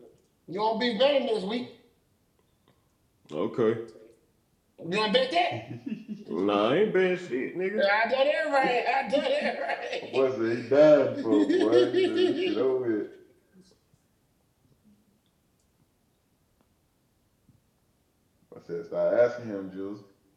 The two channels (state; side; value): identical; both; correlation 1.00